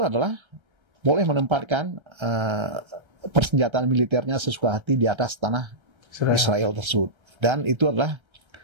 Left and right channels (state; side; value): late; left; 1.3 ms